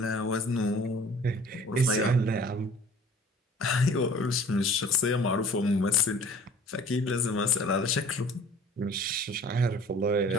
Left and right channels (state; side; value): normal; both; correlation 0.48